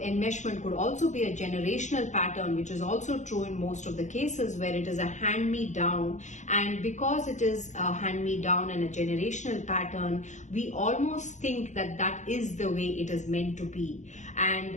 could also be a generational pattern, which is also true in most of the cases where it is a hand-me-down. And because it is a hand-me-down and a generational pattern, we almost think that that is the way it is meant to be.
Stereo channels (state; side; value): late; right; 0.35 ms